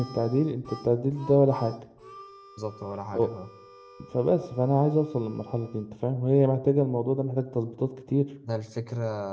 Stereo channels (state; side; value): identical; both; correlation 1.00